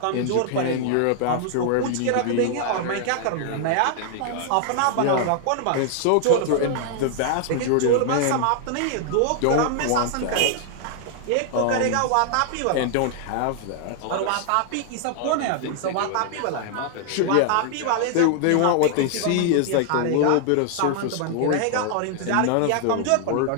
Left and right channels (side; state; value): both; different; correlation 0.00